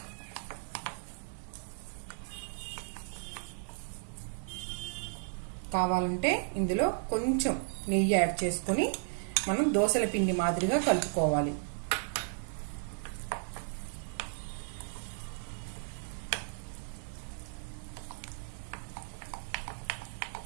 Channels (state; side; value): silent; left; 55 dB below the other